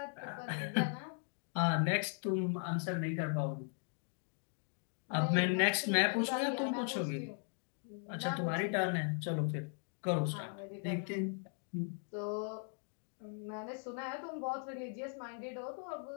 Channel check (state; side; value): silent; right; 52 dB below the other